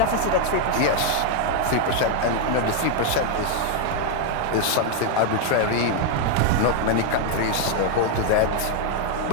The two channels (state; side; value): different; both; correlation 0.00